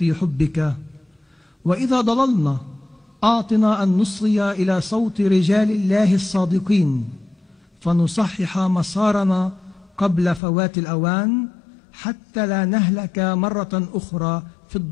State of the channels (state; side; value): drops out; right; at 10.4 s